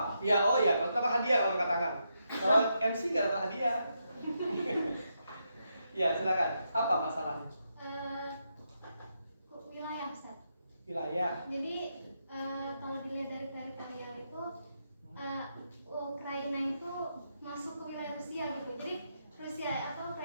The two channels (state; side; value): inverted; both; correlation -0.82